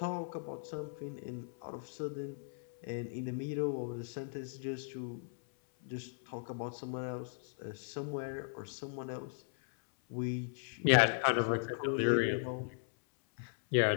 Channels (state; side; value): silent; right; 53 dB below the other